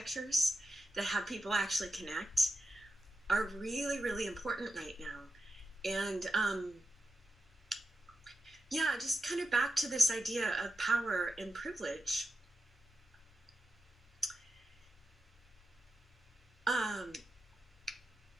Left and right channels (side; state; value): both; normal; correlation 0.89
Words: that have people actually connect are really, really important right now. And just kind of back to this idea of power and privilege.